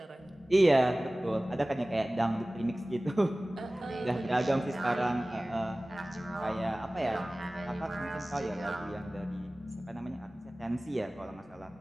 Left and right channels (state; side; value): normal; both; correlation 0.98